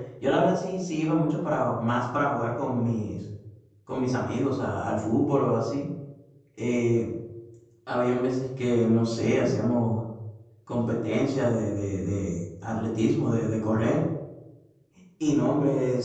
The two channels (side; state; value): both; identical; correlation 1.00